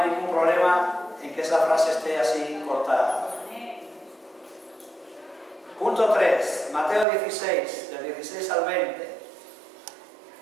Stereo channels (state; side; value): drops out; left; at 7.1 s